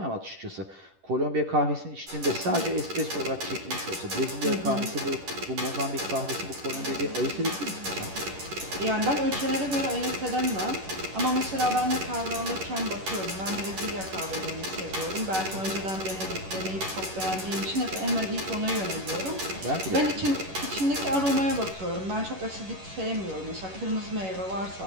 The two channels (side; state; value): left; late; 11 ms